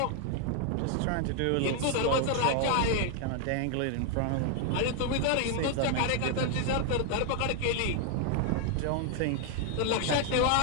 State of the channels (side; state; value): both; different; correlation 0.00